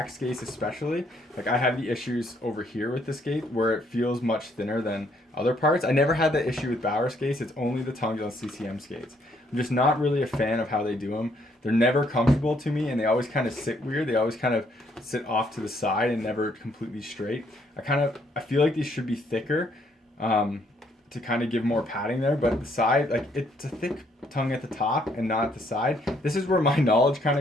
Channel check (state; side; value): normal; both; correlation 0.69